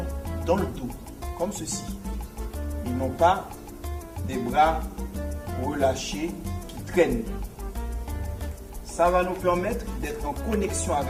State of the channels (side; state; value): both; identical; correlation 1.00